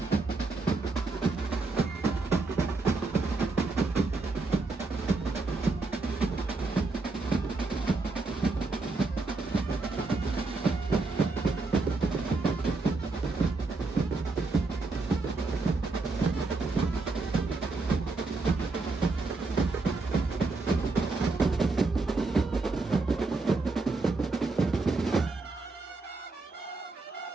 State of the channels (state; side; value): quieter; left; 3.6 dB